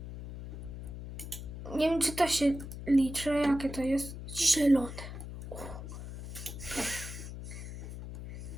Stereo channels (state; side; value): noise; left; hum, 10 dB below the sound